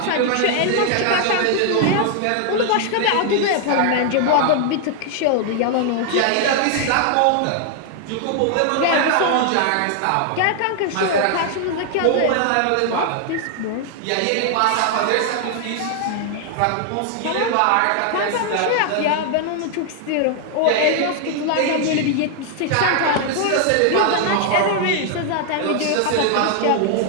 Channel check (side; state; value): both; different; correlation 0.00